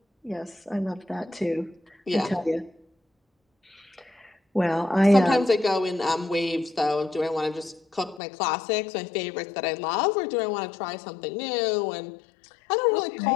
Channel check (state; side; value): drops out; right; at 8.2 s